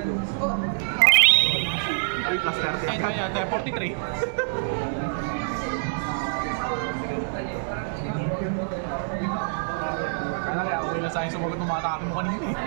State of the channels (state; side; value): silent; left; digital silence